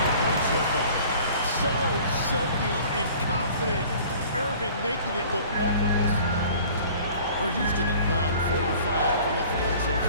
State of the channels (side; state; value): both; inverted; correlation -0.48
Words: points so far. So silky and confident. Irving making it look effortless. For Houston, they've gone 4 of 5 from the field so